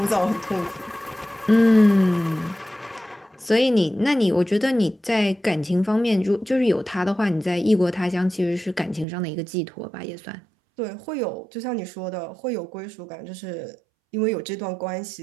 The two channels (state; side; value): drops out; left; at 9.1 s